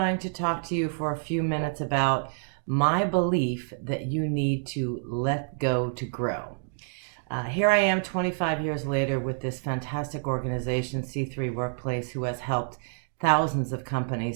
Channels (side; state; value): left; silent; digital silence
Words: to talk to you for a few minutes about my belief that you need to let go to grow. Here I am 25 years later with this fantastic organization, C3 Workplace, who has helped thousands of